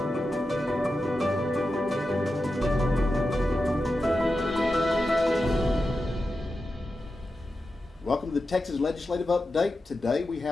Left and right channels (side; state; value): both; normal; correlation 0.90